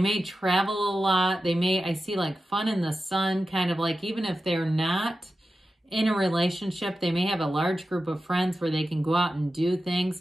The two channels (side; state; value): both; normal; correlation 0.92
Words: travel a lot. I see like fun in the sun, kind of like, even if they're not in a relationship, they may have a large group of friends where they can go out and do